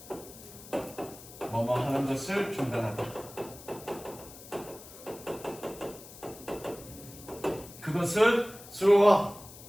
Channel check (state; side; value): noise; left; hiss, 17 dB below the sound